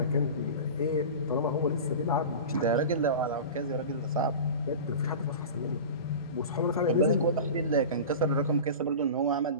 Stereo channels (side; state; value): both; inverted; correlation -0.32